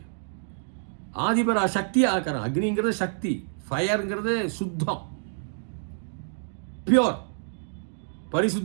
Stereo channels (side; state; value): left; silent; digital silence